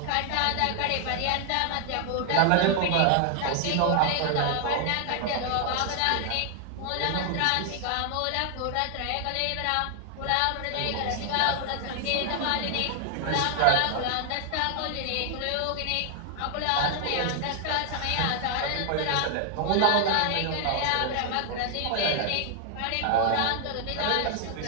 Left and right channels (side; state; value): both; different; correlation 0.00